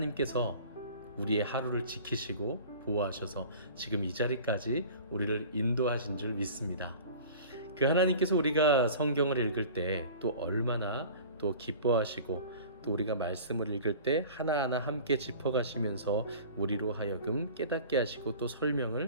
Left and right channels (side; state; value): both; inverted; correlation -0.41